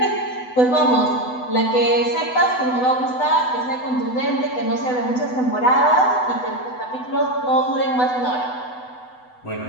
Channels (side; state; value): right; late; 8.0 ms